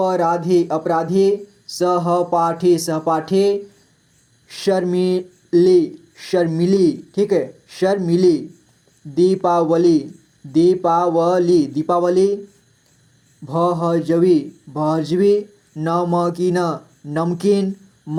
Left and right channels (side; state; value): both; identical; correlation 1.00